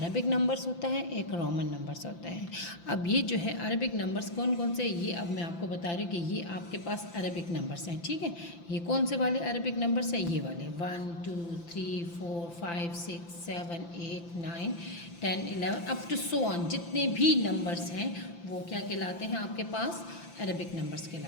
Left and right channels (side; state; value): right; late; 5.9 ms